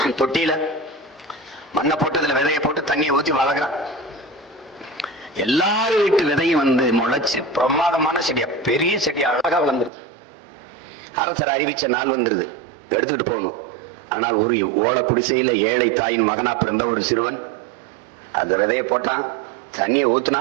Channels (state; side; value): drops out; left; at 9.9 s